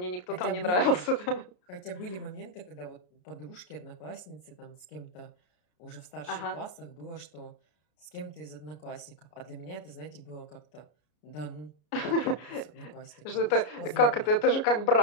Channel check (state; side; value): late; right; 33 ms